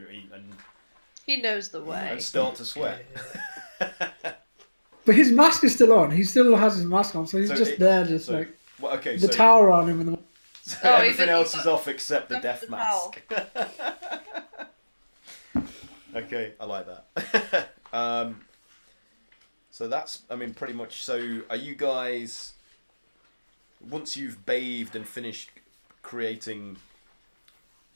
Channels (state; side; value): inverted; both; correlation -1.00